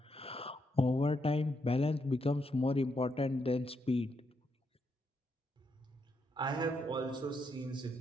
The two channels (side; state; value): both; normal; correlation 0.79